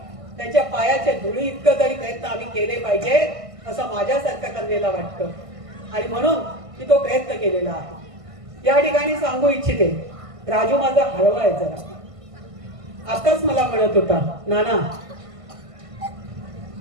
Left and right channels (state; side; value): late; left; 1.5 ms